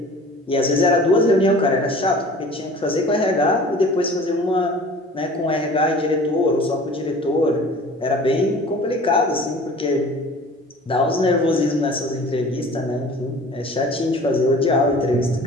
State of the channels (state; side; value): normal; both; correlation 0.45